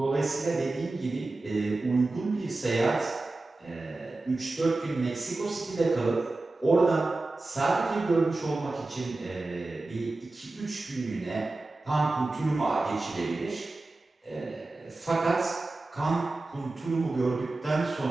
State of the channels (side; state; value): left; quieter; 3.1 dB